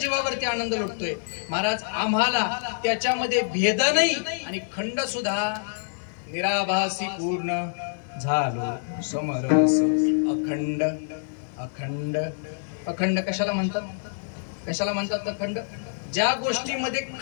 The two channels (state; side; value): silent; right; digital silence